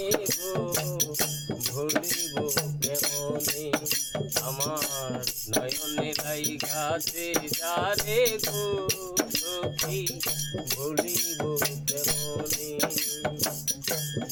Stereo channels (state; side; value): identical; both; correlation 1.00